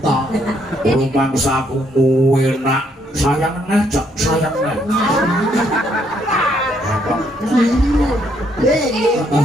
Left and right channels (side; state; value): both; normal; correlation 0.71